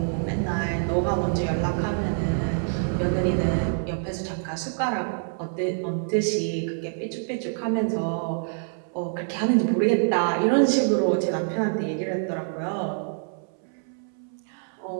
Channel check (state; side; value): silent; left; 61 dB below the other